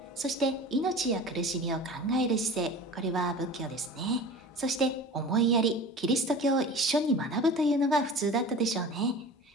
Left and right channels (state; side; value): normal; both; correlation 0.37